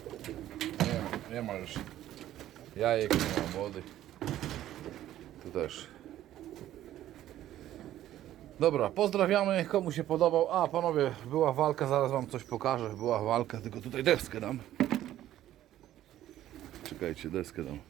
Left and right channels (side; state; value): left; quieter; 13.0 dB